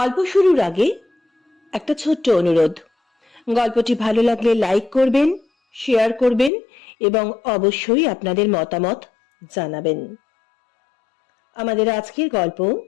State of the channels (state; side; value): drops out; right; at 6.5 s